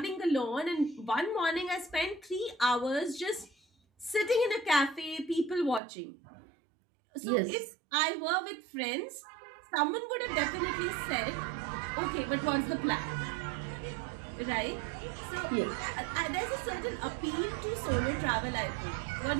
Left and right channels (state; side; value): drops out; left; at 5.8 s